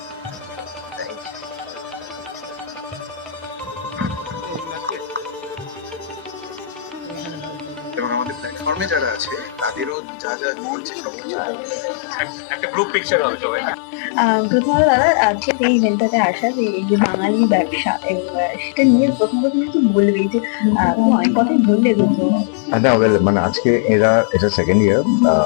এবং আমাদের প্ল্যাটফর্মে যারা আছে তাদেরও যা যা বলছে সবকিছু একটা গ্রুপ পিকচার হবে সবাই। প্রথমত দাদা আজকে এই ইভেন্টটাতে আসা, যে এই যে বাঙালি ব্যবসা এবং সেটা নিয়ে প্রথম কি বলবে, যে অনেক কথাই বললে দুটো। না, মানে আজকে এটা second year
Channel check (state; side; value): drops out; right; at 10.0 s